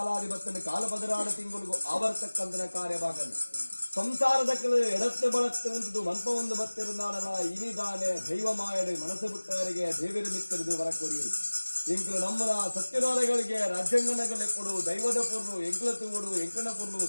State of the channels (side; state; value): both; inverted; correlation -1.00